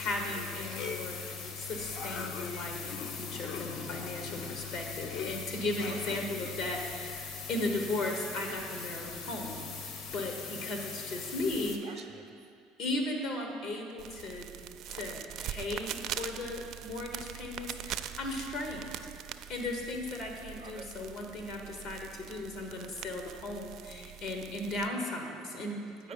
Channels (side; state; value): both; normal; correlation 0.51